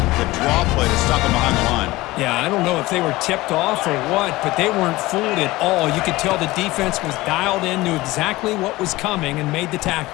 the draw play to stop him behind the line. Yeah, I don't know if they were tipped off or what, but they weren't fooled at all. You could tell the defense was dialed in, knew exactly what was coming, and made the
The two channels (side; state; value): right; quieter; 19.3 dB